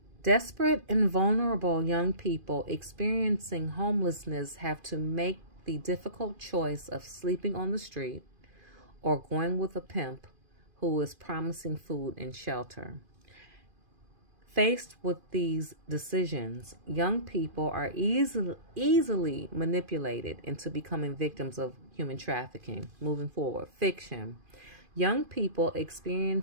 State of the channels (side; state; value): left; late; 2.5 ms